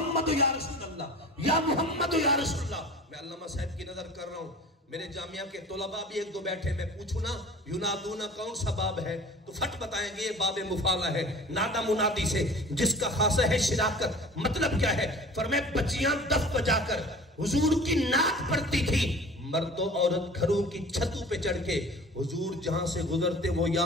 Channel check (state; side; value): normal; both; correlation 0.42